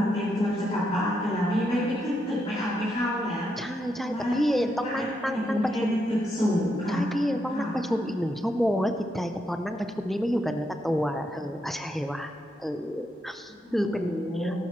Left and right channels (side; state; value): both; normal; correlation 0.81